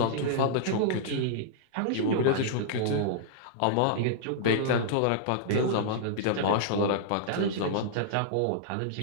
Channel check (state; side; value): different; both; correlation -0.02